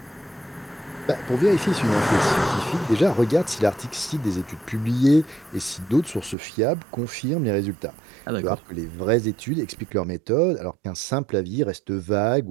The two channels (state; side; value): drops out; left; at 6.4 s